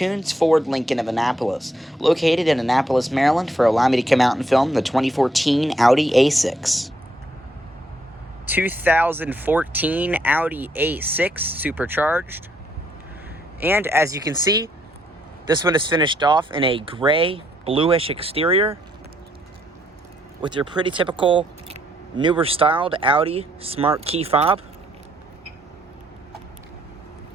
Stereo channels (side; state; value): both; normal; correlation 0.72